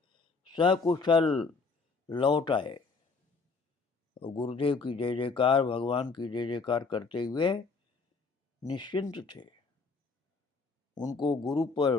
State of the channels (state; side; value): quieter; right; 4.4 dB